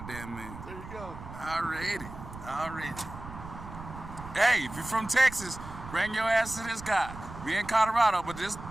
man. There you go. Already. Hey, if you're from Texas, bring your ass to this guy. We in Colorado, but this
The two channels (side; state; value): right; noise; rumble, 13 dB below the sound